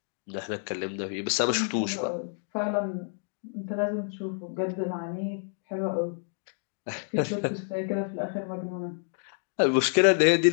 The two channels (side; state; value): right; silent; 59 dB below the other